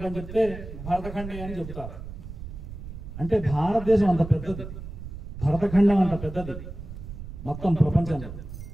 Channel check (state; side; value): noise; right; rumble, 10 dB below the sound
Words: చెప్తే భరతఖండే అని చెబుతారు. అంటే భారతదేశం అంత పెద్దది, భరతఖండం అంత పెద్దది మొత్తం ప్రపంచంలో.